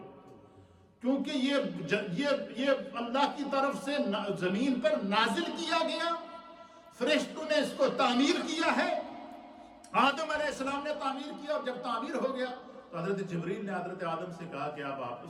کیونکہ یہ اللہ کی طرف سے زمین پر نازل کیا گیا، فرشتوں نے اس کو تعمیر کیا ہے، آدم علیہ السلام نے تعمیر کیا، اور جب تعمیر ہو گیا تو حضرت جبریل نے حضرت آدم سے کہا کہ اب آپ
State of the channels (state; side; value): identical; both; correlation 1.00